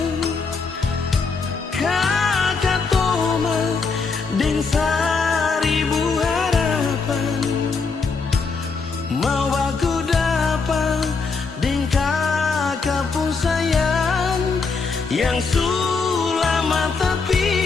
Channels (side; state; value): right; quieter; 4.7 dB